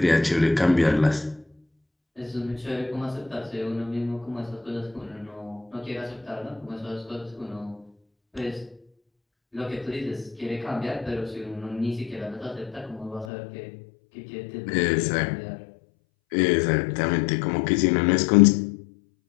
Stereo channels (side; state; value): right; drops out; at 13.2 s